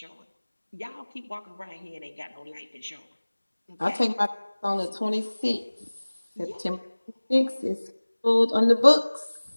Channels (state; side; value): inverted; both; correlation -1.00